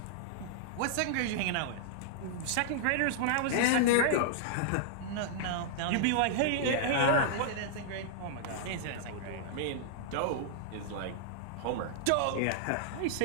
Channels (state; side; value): different; both; correlation -0.01